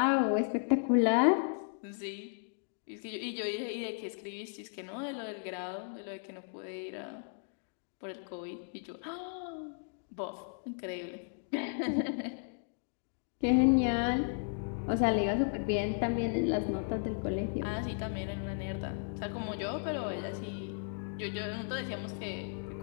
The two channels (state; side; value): silent; right; digital silence